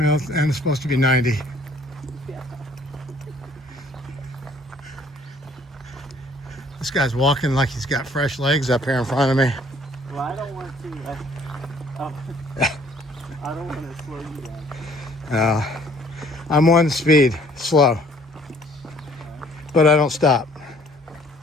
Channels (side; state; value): both; normal; correlation 0.58